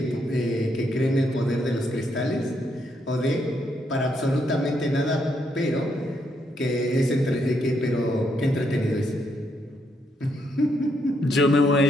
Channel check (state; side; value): normal; both; correlation 0.76